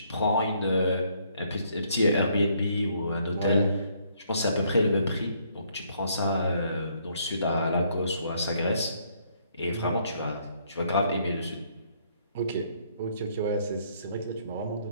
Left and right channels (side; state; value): both; inverted; correlation -0.68